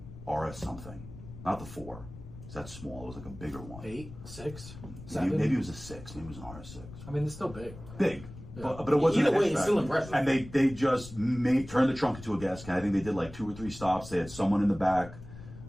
RS something, not the 4. That's small. It was like a bigger one. 8, 6, 7. Maybe it was a 6. Maybe it was an RS6. I mean, it's still big. Big. But it wasn't Either a way, it's hatchback. still impressive. And they just turned the trunk into a gas can. I think they did like 2 or 3 stops. They had someone in the back,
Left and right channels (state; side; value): noise; left; rumble, 15 dB below the sound